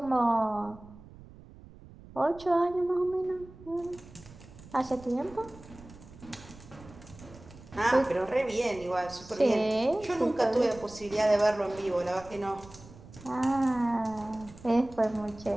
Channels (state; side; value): noise; right; rumble, 19 dB below the sound